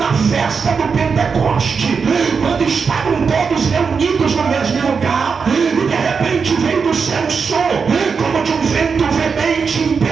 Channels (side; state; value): left; quieter; 5.6 dB